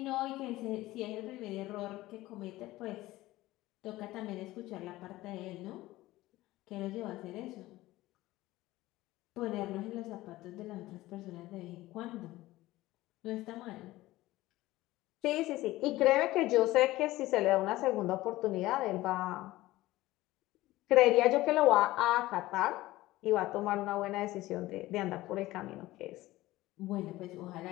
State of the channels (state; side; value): quieter; right; 17.5 dB